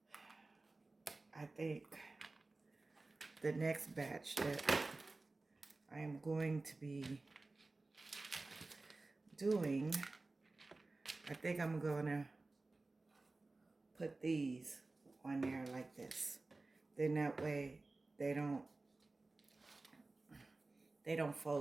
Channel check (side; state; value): left; quieter; 3.3 dB